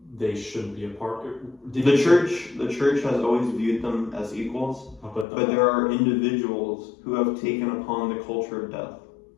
they shouldn't be a part. The church has always viewed them as equals, but there are individuals who have taken upon the culture of death.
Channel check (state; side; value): drops out; right; at 5.2 s